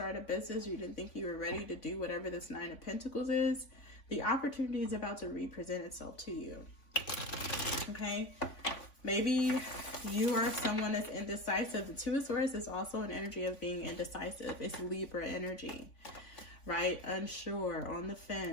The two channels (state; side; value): late; right; 3.5 ms